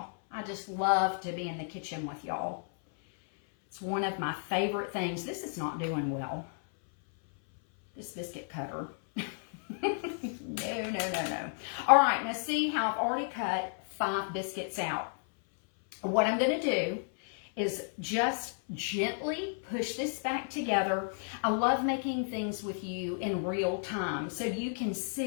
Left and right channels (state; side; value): silent; right; 56 dB below the other